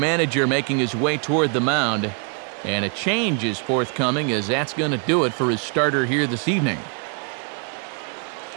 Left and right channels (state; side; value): quieter; left; 38.4 dB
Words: making his way toward the mound. And a change is forthcoming, as that's going to do it for his starter here this evening.